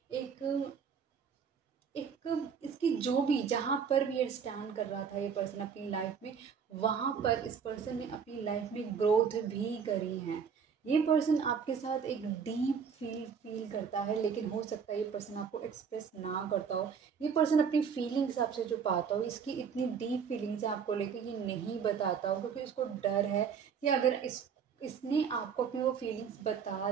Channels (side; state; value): left; quieter; 6.7 dB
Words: एक एक इसकी जो भी, जहाँ पर भी ये स्टैंड कर रहा था ये पर्सन अपनी लाइफ में, वहाँ पर इस पर्सन ने अपनी लाइफ में ग्रोथ भी करी है। ये पर्सन आपके साथ एक डीप फील करता है, लेकिन हो सकता है ये पर्सन आपको एक्सप्रेस ना करता हो। ये पर्सन अपनी फीलिंग्स आपसे छुपाता हो, इसकी इतनी डीप फीलिंग्स है आपको लेकर ये नहीं बताता हो, क्योंकि इसको डर है कि अगर इसने आपको अपनी वो फीलिंग्स बता